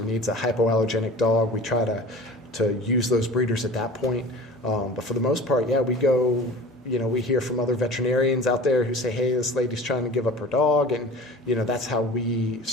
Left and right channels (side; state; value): both; normal; correlation 0.40